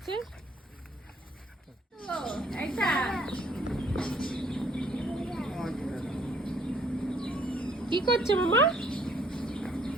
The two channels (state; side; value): normal; both; correlation 0.62